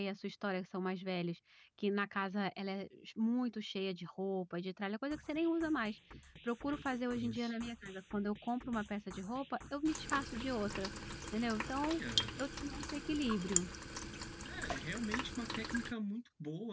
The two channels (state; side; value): identical; both; correlation 1.00